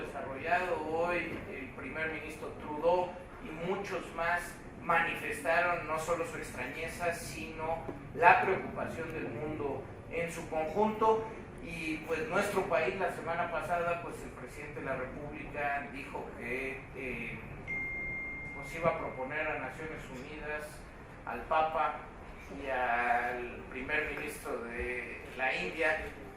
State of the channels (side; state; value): both; identical; correlation 1.00